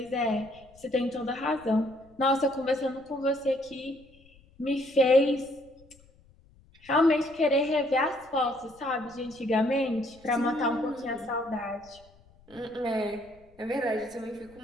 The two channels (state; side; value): noise; left; rumble, 28 dB below the sound